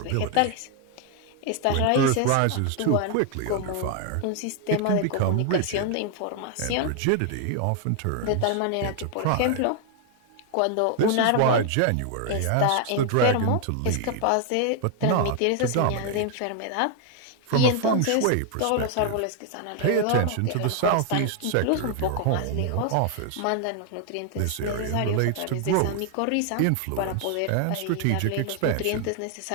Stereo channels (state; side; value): different; both; correlation 0.00